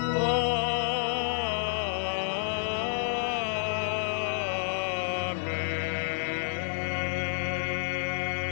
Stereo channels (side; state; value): right; silent; digital silence